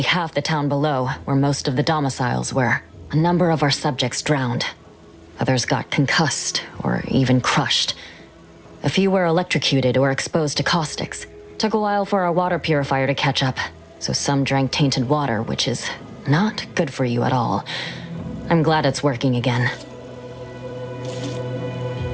half the town below, where most of the domiciles were. A number of our subjects drowned. Others got concussed, or even crushed. A few were electrocuted or exposed to caustics. Took a while for our water purifier to catch up, so some drank tainted water, which is not good for you at all. I'm glad it's working again.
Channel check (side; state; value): both; identical; correlation 1.00